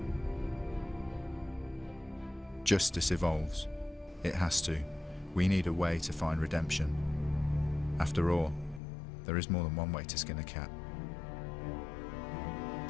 Justice evolves. It has to. We need a way to find redemption. After all, there is more than one way to skin a cat.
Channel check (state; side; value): drops out; right; at 8.8 s